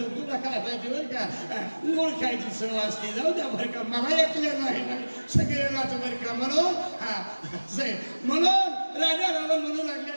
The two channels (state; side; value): inverted; both; correlation -1.00